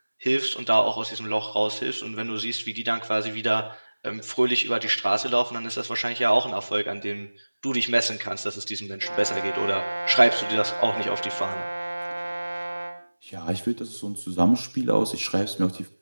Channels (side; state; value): both; inverted; correlation -1.00